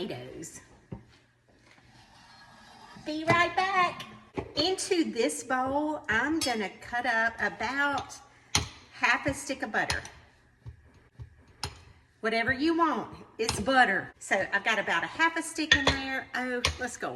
Be right back. Into this bowl, I'm gonna cut up about half a stick of butter. Whatever you want, it's butter. So I've got about a half a stick in there. Oh, let's go a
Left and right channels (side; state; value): both; identical; correlation 1.00